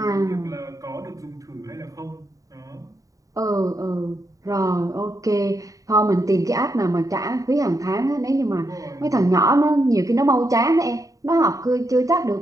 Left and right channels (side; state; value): left; late; 0.16 ms